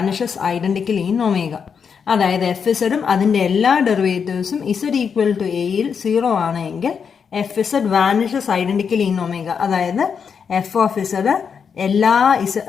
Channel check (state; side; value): quieter; right; 6.6 dB